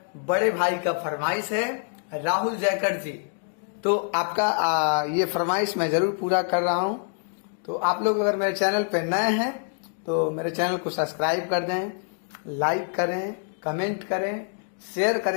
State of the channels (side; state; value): right; silent; 59 dB below the other